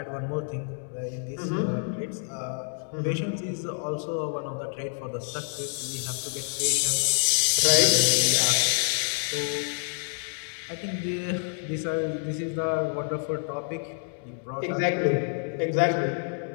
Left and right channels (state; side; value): silent; right; 60 dB below the other